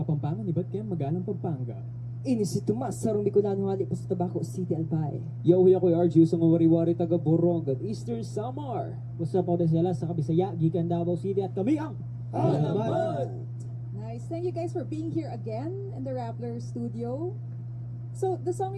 iba't kaya magalang Pampanga. Ini si Tomas, sarong Bicolano hali pa sa Tabaco City, Albay. Yo, yakoy RG, sa wari-wari taga Borongan, Eastern Samar. What's up, ako sila sa Kabisaya, Gikan Davao City, at kami ang Alamat! Nice. Thank you guys for being here again in the Rappler studio. So, the song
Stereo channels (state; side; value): identical; both; correlation 1.00